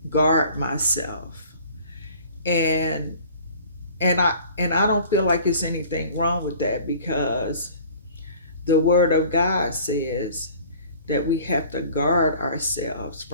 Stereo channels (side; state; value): both; inverted; correlation -0.48